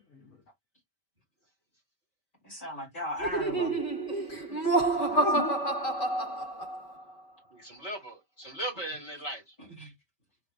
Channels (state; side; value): late; right; 5.1 ms